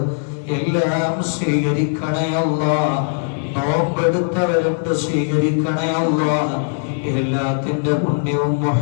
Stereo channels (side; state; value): right; silent; 64 dB below the other